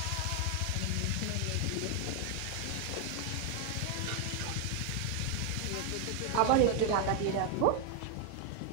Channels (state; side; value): different; both; correlation 0.01